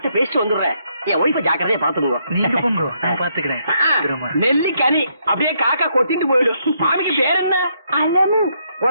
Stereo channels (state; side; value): inverted; both; correlation -0.74